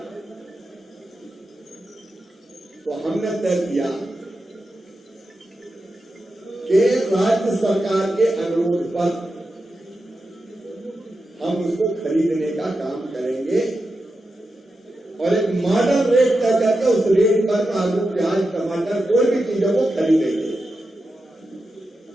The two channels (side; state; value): both; normal; correlation 0.89